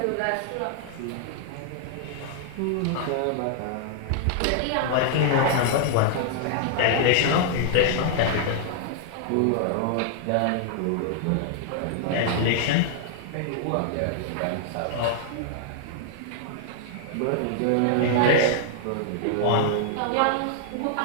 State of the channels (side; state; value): both; different; correlation -0.01